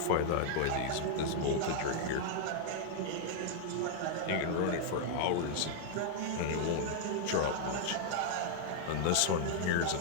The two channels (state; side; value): different; both; correlation -0.01